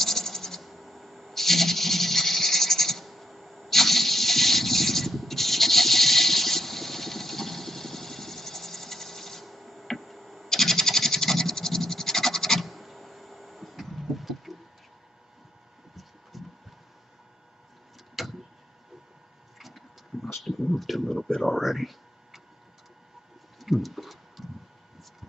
moved a little bit already.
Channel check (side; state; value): both; normal; correlation 0.78